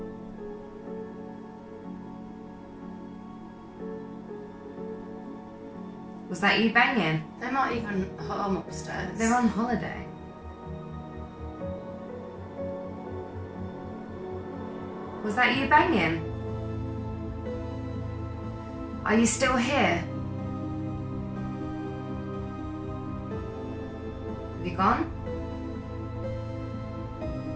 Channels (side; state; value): both; identical; correlation 1.00